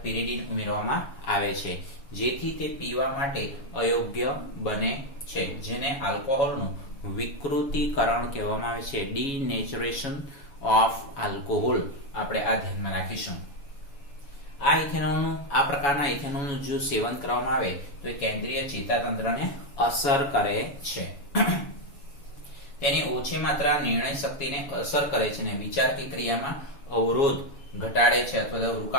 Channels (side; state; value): right; late; 7.2 ms